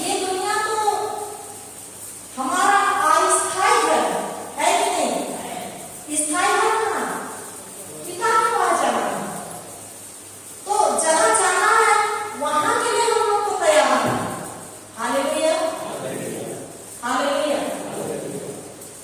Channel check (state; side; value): identical; both; correlation 1.00